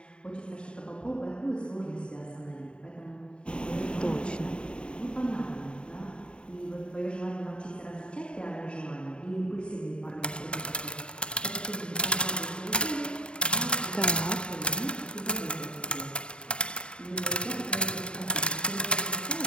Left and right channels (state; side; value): late; right; 0.053 ms